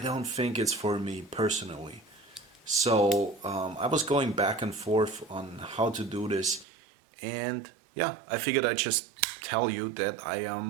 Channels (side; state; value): left; drops out; at 6.7 s